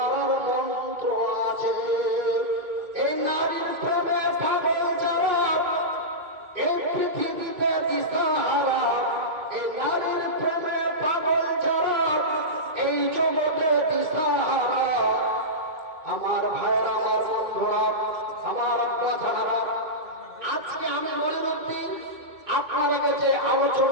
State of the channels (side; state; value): left; late; 2.3 ms